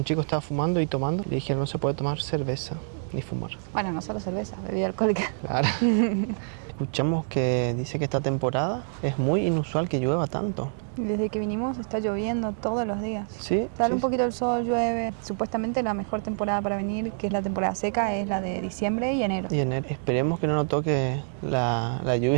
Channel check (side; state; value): left; silent; digital silence